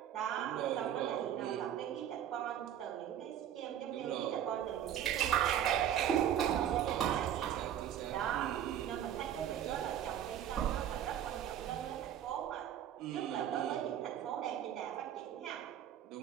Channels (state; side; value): quieter; left; 10.3 dB